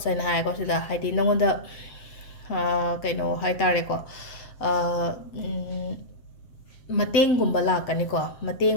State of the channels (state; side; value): late; right; 7.6 ms